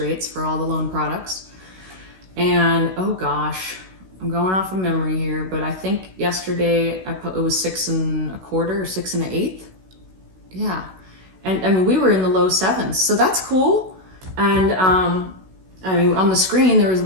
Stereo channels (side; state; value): left; late; 16 ms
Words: for all the loan products. And oh gosh, I'm going off of memory here, but I think yesterday it was 6 1/4 or 6 1/8. Yeah, and we were in the low 7s, so that's cool. And on the screen there was a